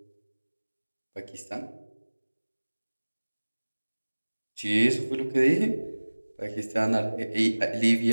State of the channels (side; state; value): both; inverted; correlation -1.00